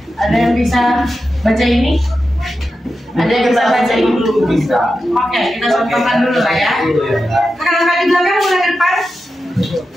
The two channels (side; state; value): both; normal; correlation 0.91